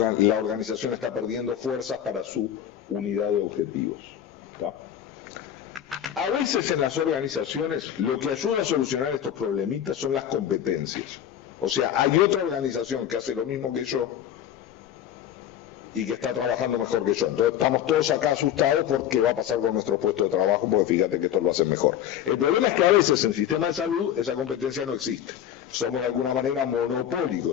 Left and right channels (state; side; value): quieter; right; 10.2 dB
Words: organización está perdiendo fuerzas para su unidad de objetivos, ¿tá? A veces en las organizaciones lo que ayuda a solucionar estos problemitas son las competencias. O sea, hay otra organización que hace lo mismo que yo, y que está trabajando mejor que yo. Entonces estamos todos acá asustados por qué va a pasar con nuestro puesto de trabajo, porque fíjate que esto lo hace mejor. El problema es que a veces en el sistema de salud esa competencia no existe. Somos de alguna manera